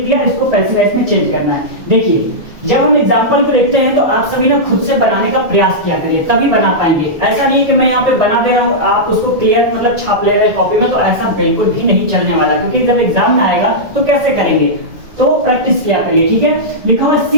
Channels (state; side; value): late; left; 1.8 ms